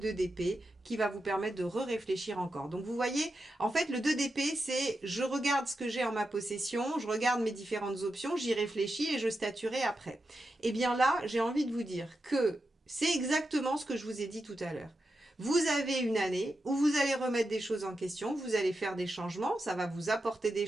d'épée qui va vous permettre de réfléchir encore. Donc vous voyez, en fait, le 2 d'épée, c'est je regarde ce que j'ai en ma possession, je regarde mes différentes options, j'y réfléchis et je statuerai après. Et bien là, j'ai envie de vous dire que c'est exactement ce que je vous ai dit tout à l'heure. Vous avez une année où vous allez remettre des choses en question, vous allez faire des changements, ça va vous apporter des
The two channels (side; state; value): both; normal; correlation 0.88